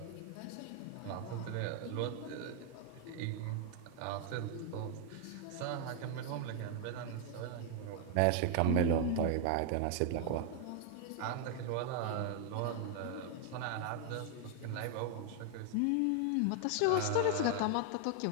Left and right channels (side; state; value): both; different; correlation 0.00